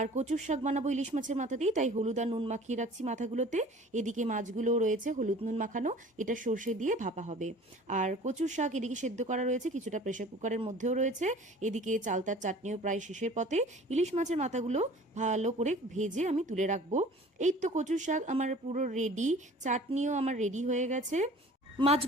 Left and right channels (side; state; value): both; normal; correlation 0.46